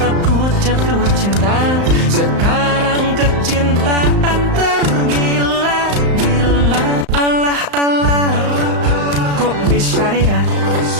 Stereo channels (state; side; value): late; left; 35 ms